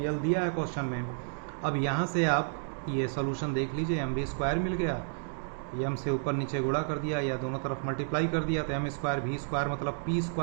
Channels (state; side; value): silent; left; digital silence